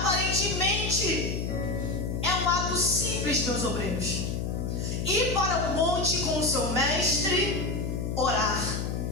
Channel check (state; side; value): noise; left; hum, 2 dB below the sound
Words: é um ato simples, meus obreiros, ir para o monte com o seu mestre, orar.